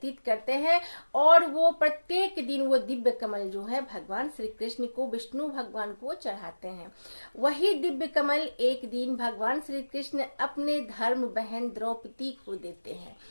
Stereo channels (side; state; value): both; inverted; correlation -1.00